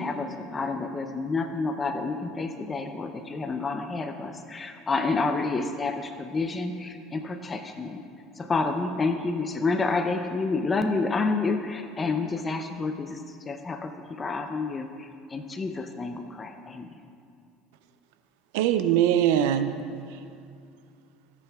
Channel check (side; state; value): both; normal; correlation 0.54